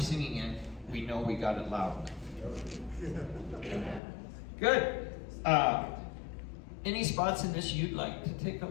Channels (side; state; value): right; drops out; at 4.0 s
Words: in, we know we got it loud enough. Good. Any spots in this you'd like to take a